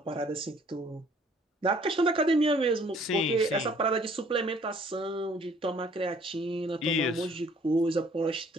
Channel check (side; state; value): both; normal; correlation 0.58